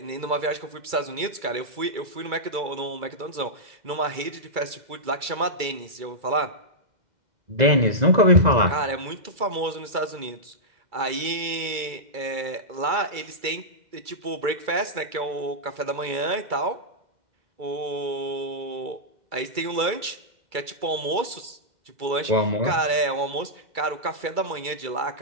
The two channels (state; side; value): late; left; 2.3 ms